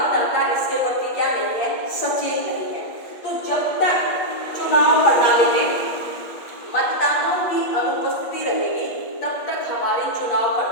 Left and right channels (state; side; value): late; right; 8.3 ms